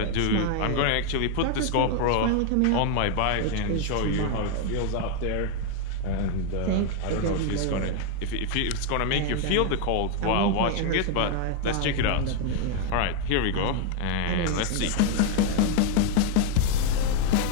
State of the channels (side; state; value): both; different; correlation 0.01